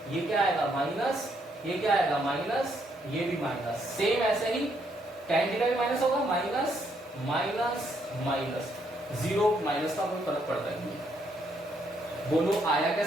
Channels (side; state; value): both; normal; correlation 0.73